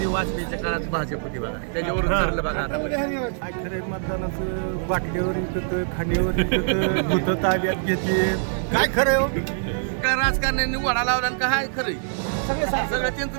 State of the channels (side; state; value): left; silent; 63 dB below the other